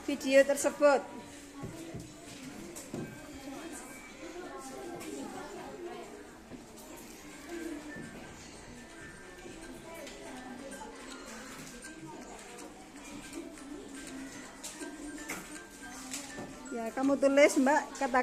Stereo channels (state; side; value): identical; both; correlation 1.00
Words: video tersebut. Ya, kamu tulis Mbak